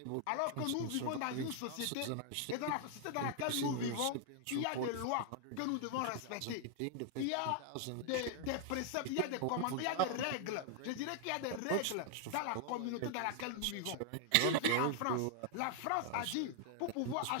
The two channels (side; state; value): both; different; correlation 0.00